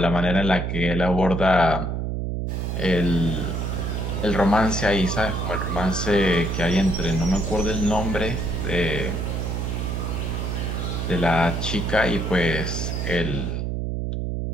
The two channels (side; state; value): right; noise; hum, 2 dB below the sound